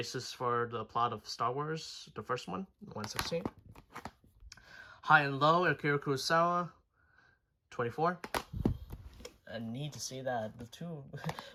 for the plot of Star Wars, the first one, 116. High and Low, Akira Kurosawa, 24. I need to see that. The two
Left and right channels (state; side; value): identical; both; correlation 1.00